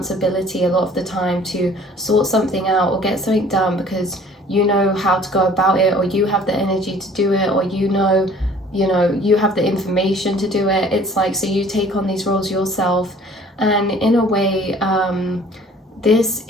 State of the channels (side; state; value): both; normal; correlation 0.52